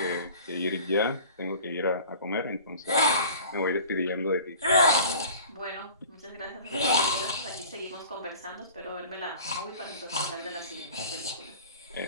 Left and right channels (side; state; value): both; inverted; correlation -0.44